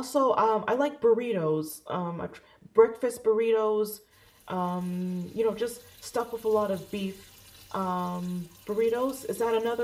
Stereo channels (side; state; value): both; identical; correlation 1.00